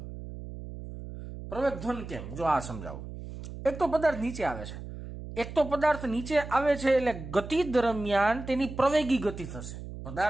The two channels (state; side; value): noise; right; hum, 11 dB below the sound